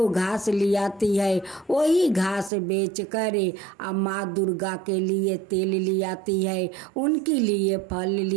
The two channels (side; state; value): left; drops out; at 2.5 s